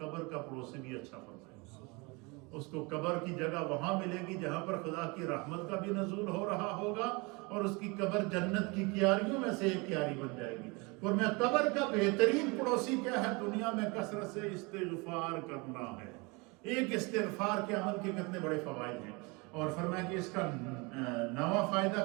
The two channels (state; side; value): quieter; left; 27.7 dB